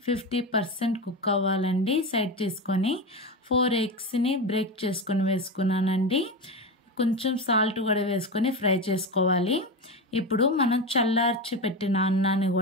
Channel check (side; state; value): both; normal; correlation 0.19